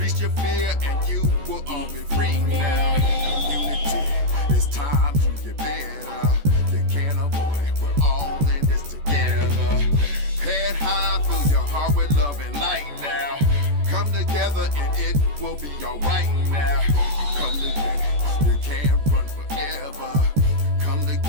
your fear and you will all be free now. Community, it's time to get better. You can't avoid it, we're all in this together. Head high, fill your heart with love and light now. Come together and it will be alright now. Come together, you can't run forever. Come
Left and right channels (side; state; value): left; late; 14 ms